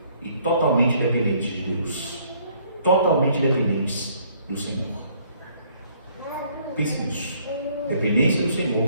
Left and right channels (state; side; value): inverted; both; correlation -0.63